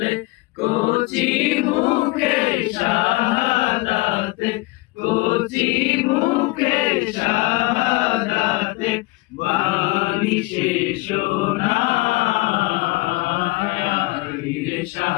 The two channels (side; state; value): right; quieter; 22.5 dB